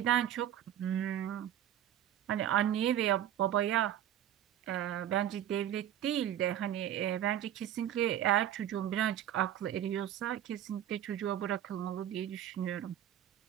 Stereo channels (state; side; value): quieter; left; 11.2 dB